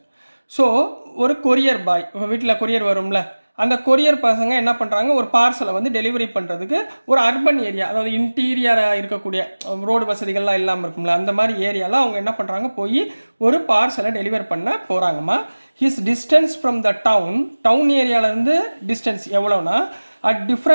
So ஒரு கொரியர் பாய், வீட்டில் கொரியர் வரும்ல, அந்த கொரியர் பசங்க என்ன பண்ணுறாங்க, ஒரு பார்சலை வந்து டெலிவரி பண்ணுறதுக்கு ஒரு அர்பன் ஏரியா, அதாவது இன்டீரியராக இருக்கக்கூடிய ரோடு வசதிகள்லாம் இல்லாமல் இருக்கும்ல, அந்த மாதிரி ஏரியாவில் அவங்க என்ன பண்ணுறாங்க, போய் ஒரு பார்சலை டெலிவர் பண்ண போகிறாங்கம்மா. His distance from the town ஏரியாவிலேருந்து டிஸ்டன்ஸ் எவ்வளோனா at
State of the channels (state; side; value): inverted; both; correlation -1.00